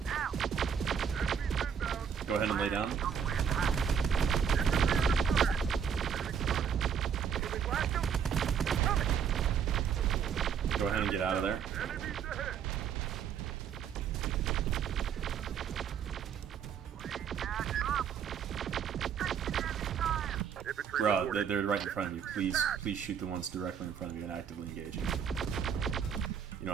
Enemies inbound. Go ahead and lay down. Can we blast them? Coming. Go ahead and get out of there. Enemies ahead. Infantry Bro, reporting. they're right in front of you. Please shoot the ones directly in front of you and actively engage. You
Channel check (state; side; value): quieter; left; 7.5 dB